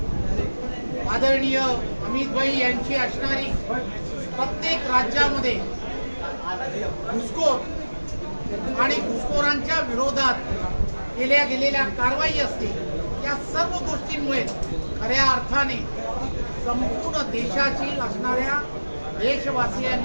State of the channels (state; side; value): inverted; both; correlation -1.00